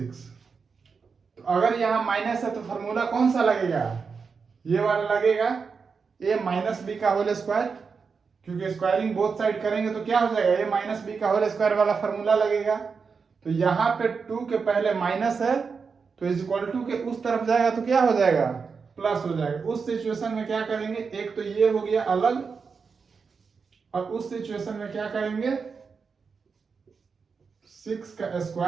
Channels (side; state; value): left; quieter; 5.3 dB